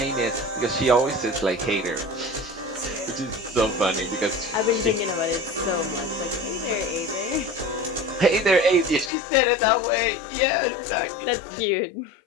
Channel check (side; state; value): right; drops out; at 9.1 s